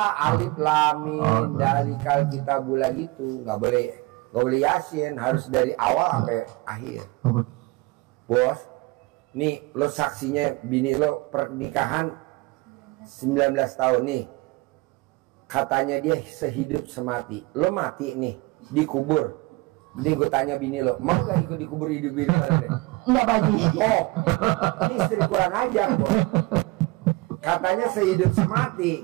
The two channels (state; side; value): quieter; left; 22.7 dB